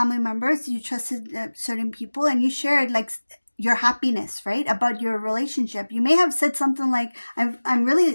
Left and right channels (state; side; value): inverted; both; correlation -1.00